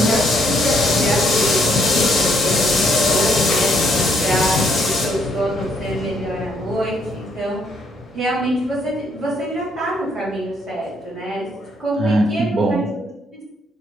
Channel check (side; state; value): both; normal; correlation 0.71